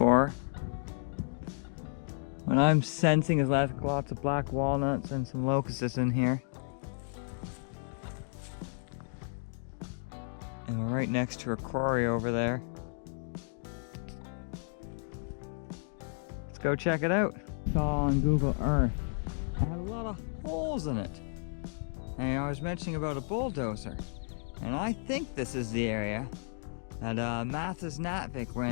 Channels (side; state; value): right; silent; digital silence